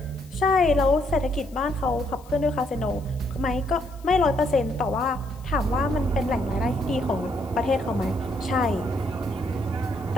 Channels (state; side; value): noise; left; hiss, 26 dB below the sound